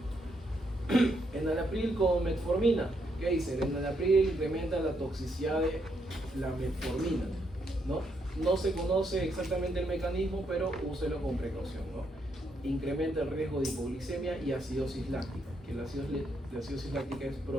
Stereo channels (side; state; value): both; normal; correlation 0.77